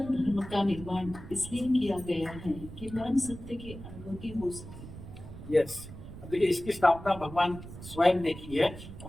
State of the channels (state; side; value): noise; right; rumble, 13 dB below the sound